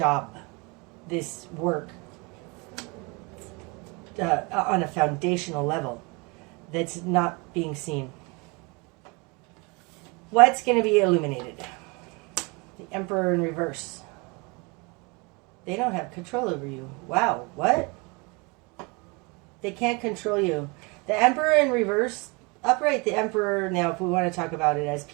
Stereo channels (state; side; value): quieter; left; 28.7 dB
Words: this work, on a foundational level that's not being seen. What's going to be illuminated? The Emperor in reverse. They don't have control over you. Wow, what? They can't control you. The Emperor in reverse, upright, the Emperor, now if we want to talk about it as